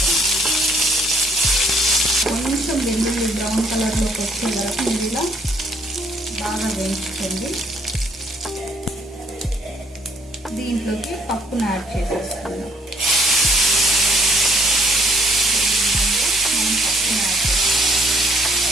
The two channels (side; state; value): both; normal; correlation 0.64